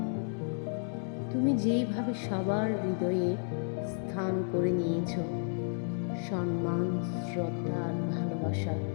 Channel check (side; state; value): right; silent; digital silence